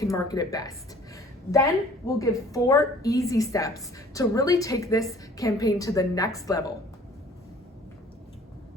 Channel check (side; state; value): both; normal; correlation 0.53